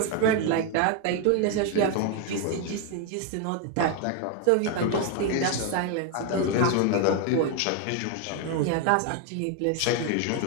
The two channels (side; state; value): both; different; correlation 0.01